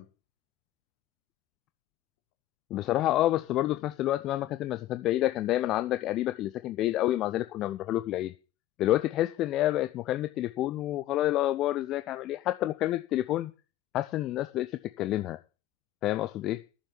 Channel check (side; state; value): right; quieter; 14.2 dB